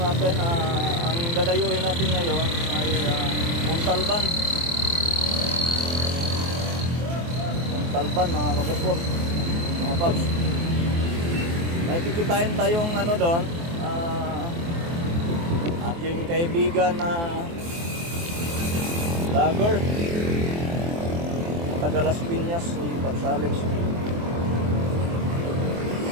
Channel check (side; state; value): left; late; 24 ms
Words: natin, ang dadayuhin natin ngayon ay Montalban. Montalban mga kaputpot, mga paps. May kikitain tayong ano doon, aking kaibigan na vlogger taga Las Piñas, si Paps Alex.